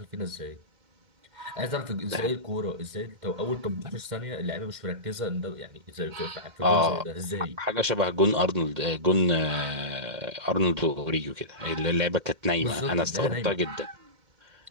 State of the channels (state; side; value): late; left; 2.1 ms